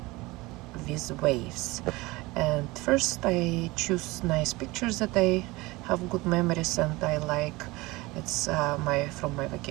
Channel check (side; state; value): left; quieter; 21.8 dB